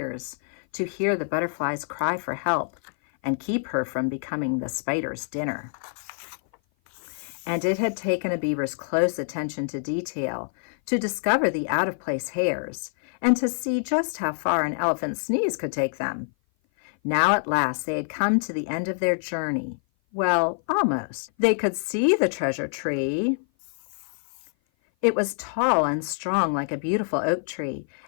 to hear the butterfly's cry for help and keep her from becoming the spider's dinner. And it had taken a beaver's close attention to detail to discover the out-of-place hairs and to see just how far an elephant's sneeze could take them. Now at last they had come to the end of their journey. Well, almost. They could see the treasure tree. It was tall and strong like a beautiful oak tree,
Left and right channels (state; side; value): silent; right; 56 dB below the other